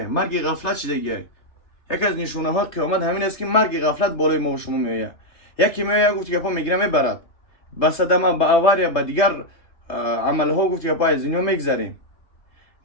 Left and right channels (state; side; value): late; right; 3.3 ms